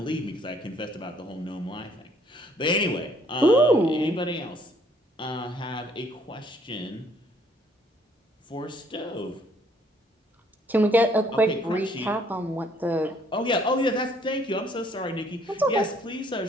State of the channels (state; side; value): normal; both; correlation 0.63